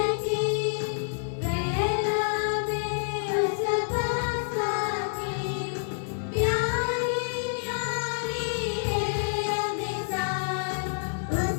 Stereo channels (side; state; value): right; silent; digital silence